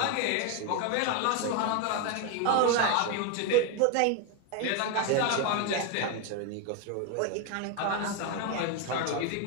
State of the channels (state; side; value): different; both; correlation 0.01